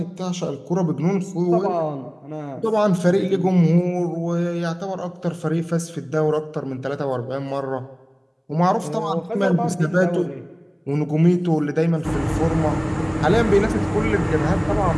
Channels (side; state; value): both; identical; correlation 1.00